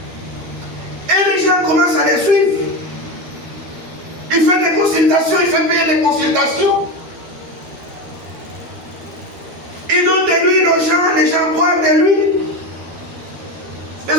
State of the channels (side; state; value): left; late; 13 ms